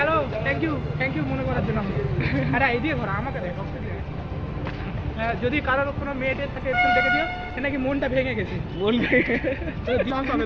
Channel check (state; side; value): identical; both; correlation 1.00